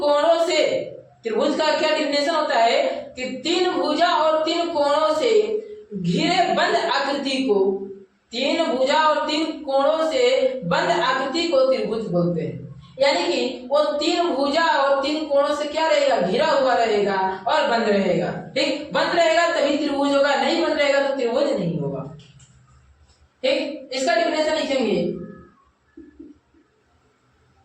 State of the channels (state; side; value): identical; both; correlation 1.00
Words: से, त्रिभुज का क्या डिफिनेशन होता है कि तीन भुजा और तीन कोणों से घिरे बंद आकृति को, तीन भुजा और तीन कोणों से बंद आकृति को त्रिभुज बोलते हैं। यानी कि वो तीन भुजा और तीन कोणों से क्या रहेगा? घिरा हुआ रहेगा और बंद रहेगा। ठीक, बंद रहेगा तभी त्रिभुज होगा, नहीं बंद रहेगा तो त्रिभुज नहीं होगा। ठीक, इसका डिफिनेशन लिखेंगे,